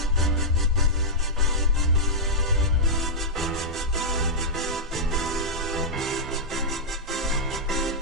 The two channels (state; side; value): normal; both; correlation -0.09